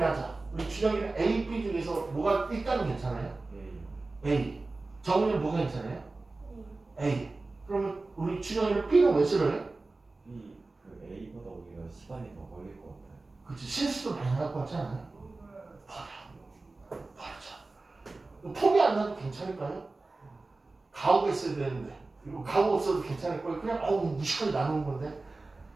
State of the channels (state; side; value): quieter; left; 3.4 dB